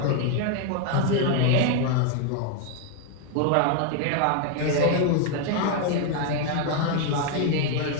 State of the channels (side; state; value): both; different; correlation 0.00